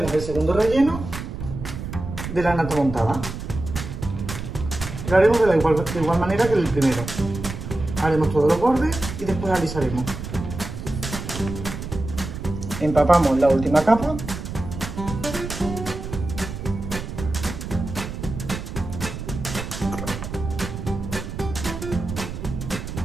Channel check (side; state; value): right; noise; rumble, 8 dB below the sound